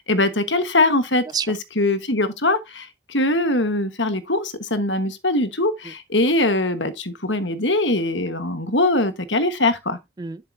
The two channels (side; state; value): both; normal; correlation 0.03